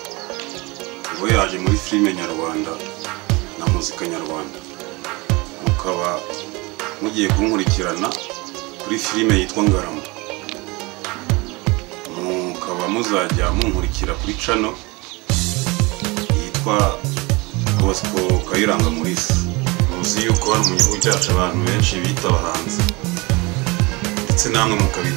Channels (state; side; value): quieter; left; 25.2 dB